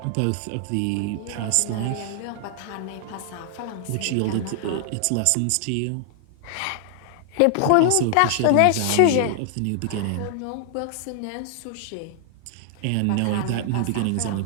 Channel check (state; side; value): different; both; correlation 0.00